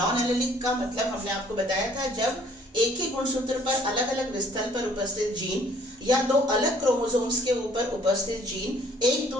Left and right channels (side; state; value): both; normal; correlation 0.59